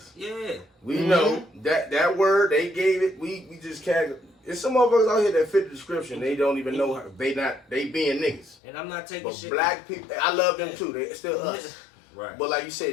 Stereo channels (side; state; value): right; drops out; at 8.6 s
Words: Yeah. We know that word they gave it. We just can't. There's some motherfuckers out here that fit the description. They don't even know they being niggas. And I'm not taking But shit. black people, I love them too. They're still us. Right. But like you